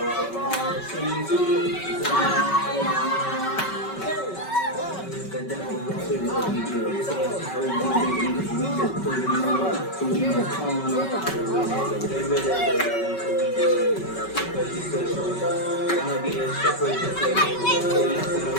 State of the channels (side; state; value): right; late; 5.3 ms